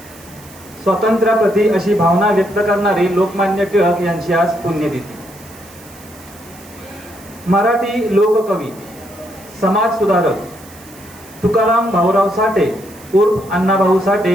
स्वातंत्र्याप्रती अशी भावना व्यक्त करणारे लोकमान्य टिळक यांची आज पुण्यतिथी. मराठी लोककवी, समाज सुधारक तुकाराम भाऊराव साठे उर्फ अण्णाभाऊ साठे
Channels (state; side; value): noise; right; hiss, 22 dB below the sound